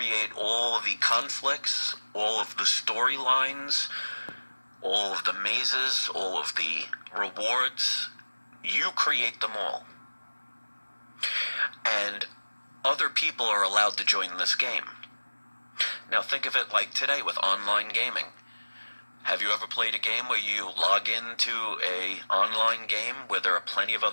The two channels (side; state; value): both; inverted; correlation -1.00